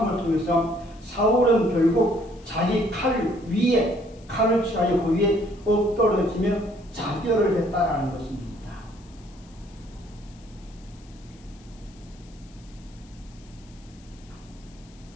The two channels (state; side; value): noise; left; hiss, 27 dB below the sound